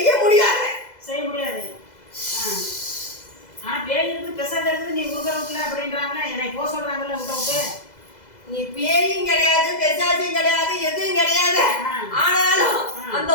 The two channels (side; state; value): right; late; 2.0 ms